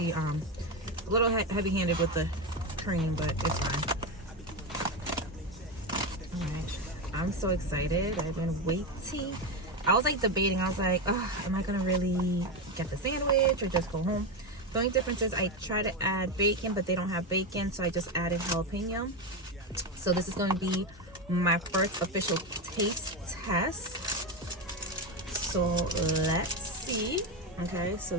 a little heavy-handed with the cream, but it's fine. All right, I'm so excited. I've been waiting. I was like debating. I was like, oh, am I gonna really get the sandwich or just go home? The only difference is I try to add bacon, but they don't have bacon, so I just added jalapeno. So this is gonna be my first official taste test. So let's see. Okay, so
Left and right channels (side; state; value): both; normal; correlation 0.13